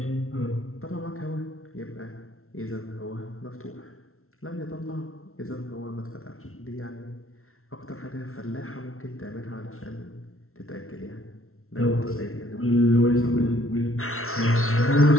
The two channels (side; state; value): right; late; 0.62 ms